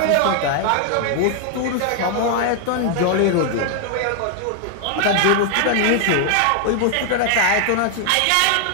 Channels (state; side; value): different; both; correlation 0.00